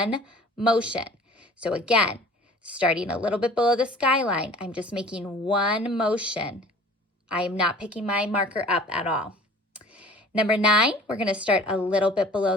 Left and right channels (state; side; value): normal; both; correlation 0.47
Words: motion. So again, starting a little bit below the skyline, I'm just making one motion. I am not picking my marker up at all. Number 9, we're going to start a little bit